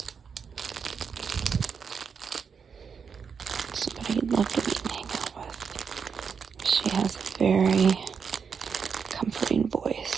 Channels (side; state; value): left; quieter; 6.2 dB